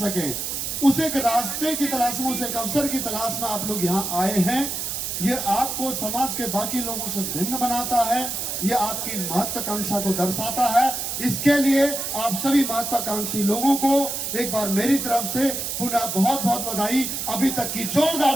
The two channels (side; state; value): right; noise; hiss, 3 dB below the sound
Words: उस एक रास्ते की तलाश में, उस एक अवसर की तलाश में आप लोग यहां आए हैं। ये आपको समाज के बाकी लोगों से भिन्न बनाता है, ये आपकी महत्वाकांक्षा को दर्शाता है। इसके लिए आप सभी महत्वाकांक्षी लोगों को एक बार मेरी तरफ से पुनः बहुत बहुत बधाई। अभी तक की